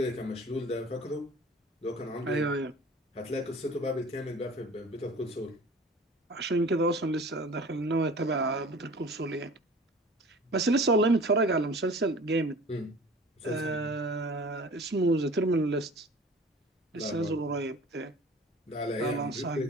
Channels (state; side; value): normal; both; correlation 0.43